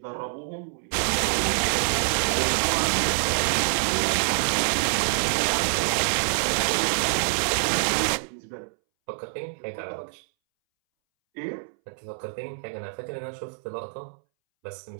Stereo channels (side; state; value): left; silent; 61 dB below the other